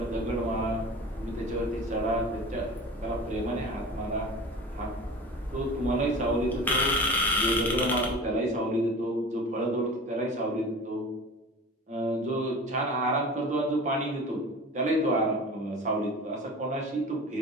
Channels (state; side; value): normal; both; correlation 0.37